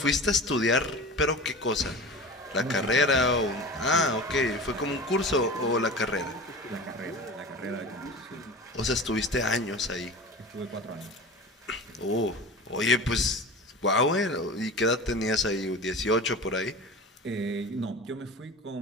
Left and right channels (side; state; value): both; normal; correlation 0.34